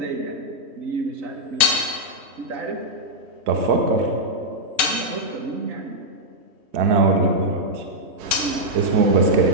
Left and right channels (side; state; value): left; late; 3.2 ms